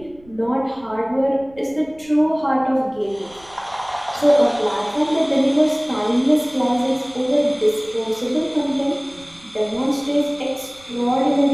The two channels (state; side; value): noise; right; rumble, 26 dB below the sound